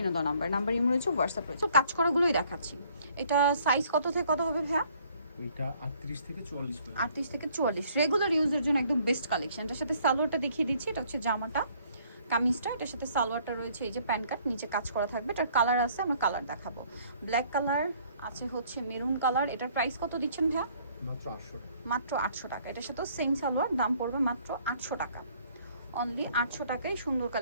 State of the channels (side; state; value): both; inverted; correlation -0.61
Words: দেওয়া নাম্বার ইমো রয়েছে, হোয়াটসঅ্যাপ রয়েছে। তো কাজ করাগুলোই দেখাচ্ছি। এটা সাইজ কত থেকে কত হবে ভাইয়া? এটা 38 থেকে 44 পর্যন্ত। 38 থেকে 44 রেগুলার ইউজের জন্য একদম বেস্ট কালেকশন। এটার সাথে সালোয়ারটা দেখিয়ে দিচ্ছি। এটা হচ্ছে জামাটা, কামিজটা, এটার সাথে সালোয়ারটা রয়েছে এই যে প্যান্ট কাট, নিচে কাজ করা থাকবে। এটার কালার আছে, আমরা কালার দেখাবো। ব্ল্যাক কালার আছে, হচ্ছে মেরুন কালার। এটার প্রাইস কত দিচ্ছেন ভাইয়া? মাত্র 800 টাকা। মাত্র 800 টাকা। এটার সাথে সেম সালোয়ার, দাম পড়বে মাত্র 800 টাকা। অনলি 800 টাকায় সুন্দর